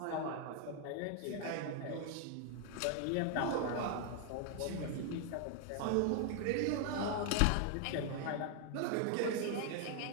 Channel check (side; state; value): both; different; correlation 0.00